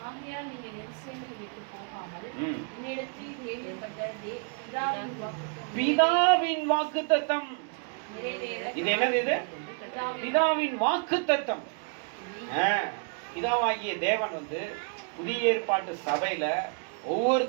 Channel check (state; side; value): quieter; left; 38.0 dB